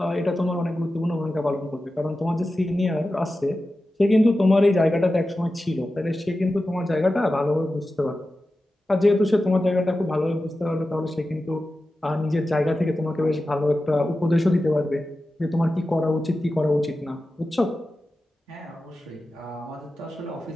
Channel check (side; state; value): both; normal; correlation 0.93